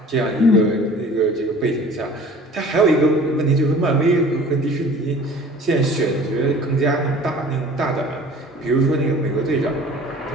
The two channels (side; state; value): both; normal; correlation 0.46